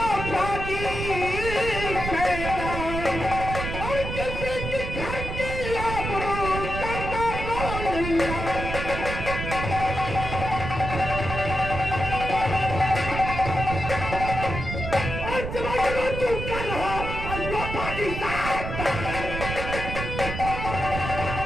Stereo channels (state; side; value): noise; right; rumble, 5 dB below the sound